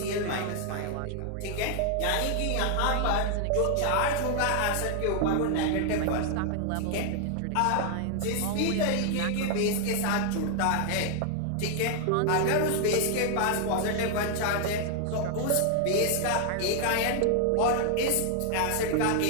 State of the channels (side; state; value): both; different; correlation 0.00